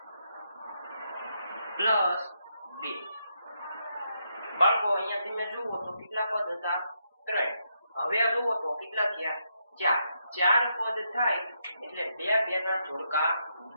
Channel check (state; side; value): inverted; both; correlation -0.80